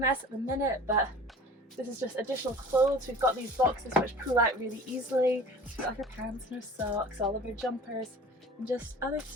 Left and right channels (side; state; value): both; normal; correlation 0.42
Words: at the minute, but this is just additional clothes. We've got these boxes which pull out really easily. We've got our pants and our socks, all of our jumpers, and just other